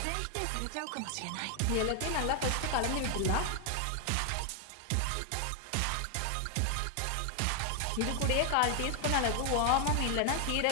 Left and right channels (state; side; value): different; both; correlation 0.00